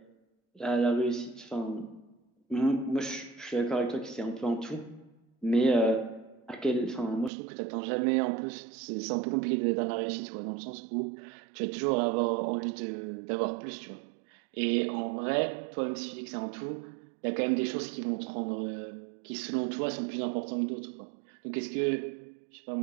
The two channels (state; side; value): drops out; left; at 7.3 s